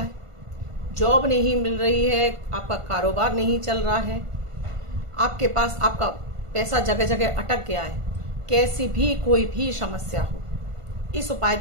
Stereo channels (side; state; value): left; late; 1.5 ms